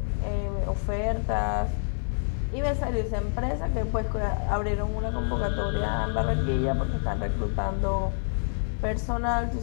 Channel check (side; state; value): right; silent; digital silence